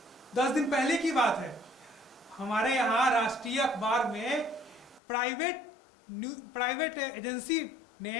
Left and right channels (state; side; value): drops out; right; at 5.0 s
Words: 10 दिन पहले की बात है, हमारे यहाँ राष्ट्रीय अखबार में प्राइवेट एजेंसी ने